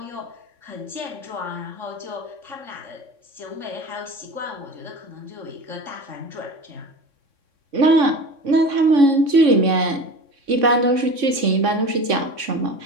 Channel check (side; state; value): left; late; 3.6 ms